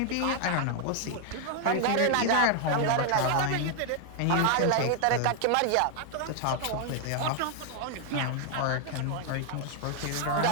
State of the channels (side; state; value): both; different; correlation 0.00